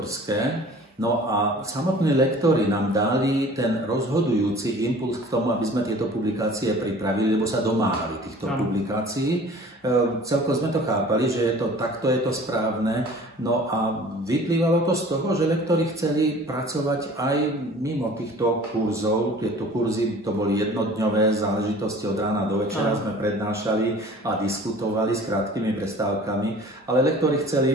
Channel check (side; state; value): both; normal; correlation 0.46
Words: No a samotní lektori nám dali ten rozhodujúci impuls k tomu, aby sme tieto publikácie pripravili, lebo sa domáhali týchto publikácií. Celkom sme to chápali, že takto je to správne. No a vyplývalo to z toho, že lektori chceli pracovať aj mimo týchto kurzov. Tieto kurzy to boli jednodňové záležitosti, od rána do večera sme prednášali a diskutovali s krátkými prestávkami, ale lektori